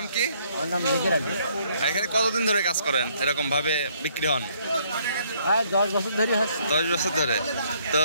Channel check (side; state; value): both; inverted; correlation -0.66